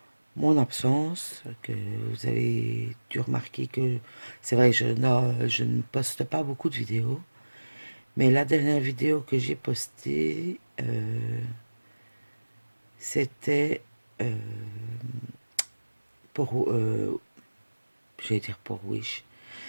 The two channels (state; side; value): inverted; both; correlation -1.00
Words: mon absence, que vous avez dû remarquer que c'est vrai, je ne poste pas beaucoup de vidéos, mais la dernière vidéo que j'ai postée, c'était euh, pour, j'allais dire pour Wish,